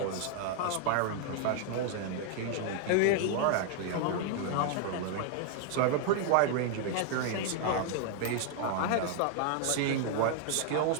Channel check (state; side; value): different; both; correlation 0.00